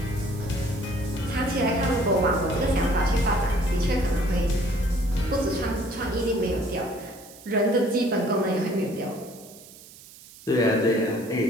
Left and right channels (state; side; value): noise; right; hiss, 20 dB below the sound